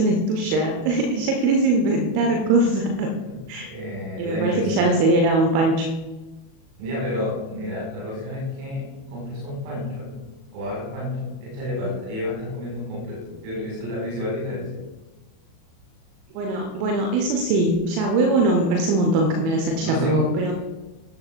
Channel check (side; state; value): left; late; 37 ms